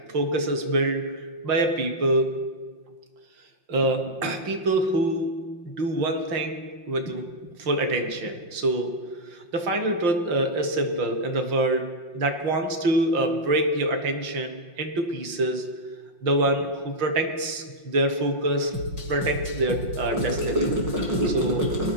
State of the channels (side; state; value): left; late; 5.7 ms